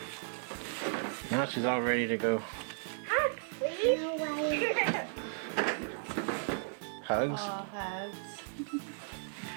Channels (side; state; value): left; silent; digital silence